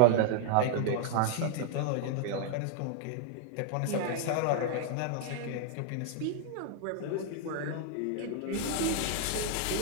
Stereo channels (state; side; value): different; both; correlation 0.01